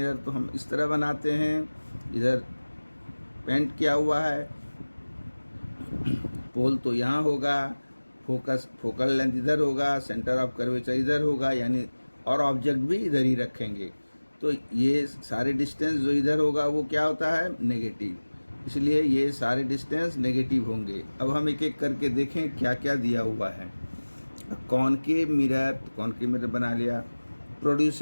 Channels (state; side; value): inverted; both; correlation -1.00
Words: तो हम इस तरह बनाते हैं, इधर पेंट किया हुआ है, पोल तो यहाँ होगा, फोकल लेंथ इधर होगा, सेंटर ऑफ कर्वेचर इधर होगा, यानी और ऑब्जेक्ट भी इधर ही रखेंगे। तो ये सारे डिस्टेंस जो इधर होगा वो क्या होता है? नेगेटिव, इसलिए ये सारे डिस्टेंस नेगेटिव होंगे। अब हम एक एक करके देखें क्या क्या दिया हुआ है। कॉनकेव मिरर बना लिया।